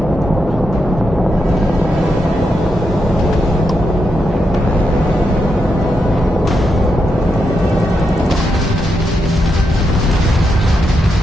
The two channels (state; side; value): normal; both; correlation 0.84